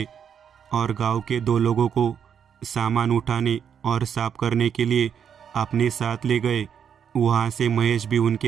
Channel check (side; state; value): left; quieter; 7.9 dB